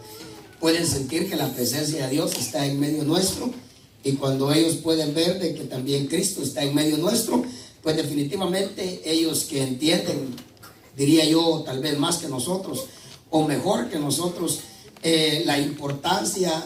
pueden sentir que la presencia de Dios está en medio nuestro, y cuando ellos pueden ver de que también Cristo está en medio nuestro, pues definitivamente ellos que entienden, diría yo, tal vez más que nosotros o mejor que nosotros, la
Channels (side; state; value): both; identical; correlation 1.00